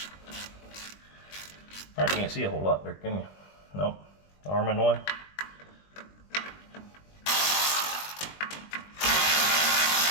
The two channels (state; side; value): late; right; 20 ms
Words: I can't see a whole lot there, can you? Nope. Arm in the way.